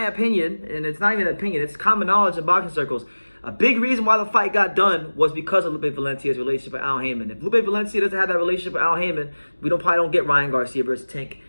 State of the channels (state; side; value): inverted; both; correlation -1.00